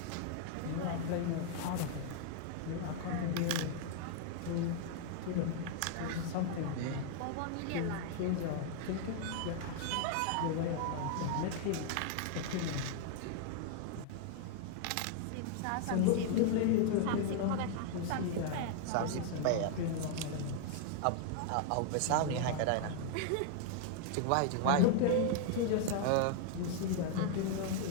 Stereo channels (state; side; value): different; both; correlation 0.00